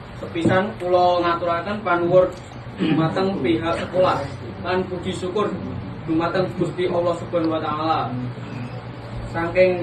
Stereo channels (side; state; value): both; identical; correlation 1.00